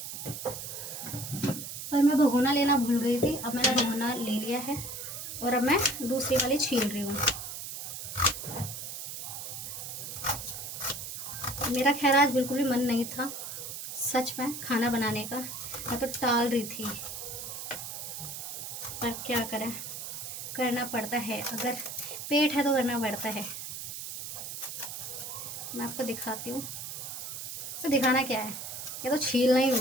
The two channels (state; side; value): noise; right; hiss, 7 dB below the sound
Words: पर मैं भगोना लेना भूल गई थी। अब मैंने भगोना ले लिया है और अब मैं दूसरी वाली छील रही हूँ। मेरा खैर आज बिल्कुल भी मन नहीं था सच में खाना बनाने का, मैं तो टाल रही थी, पर क्या करें, करना पड़ता है। अगर पेट है तो करना पड़ता है। मैं आपको दिखाती हूँ। तो दिखाना क्या है, ये तो छीलना ही